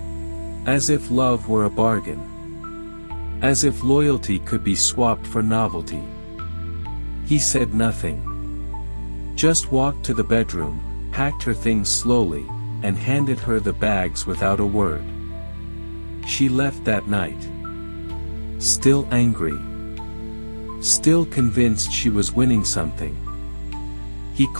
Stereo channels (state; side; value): inverted; both; correlation -1.00